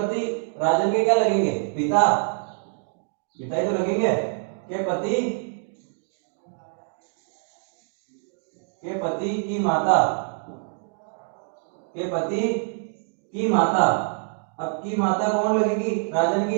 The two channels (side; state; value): left; silent; 62 dB below the other